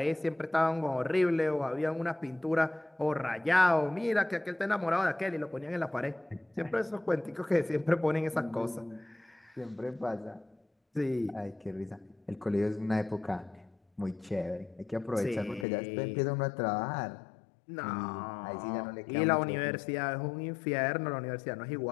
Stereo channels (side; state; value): right; drops out; at 15.7 s